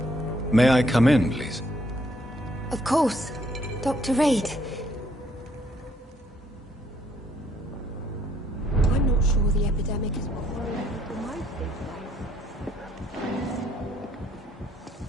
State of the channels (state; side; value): normal; both; correlation 0.68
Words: May I come in, please? Of course. Dr. Reed. I'm not sure the epidemic is what worries people most these days.